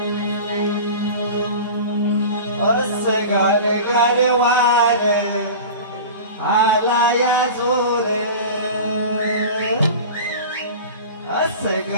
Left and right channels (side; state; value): both; inverted; correlation -0.34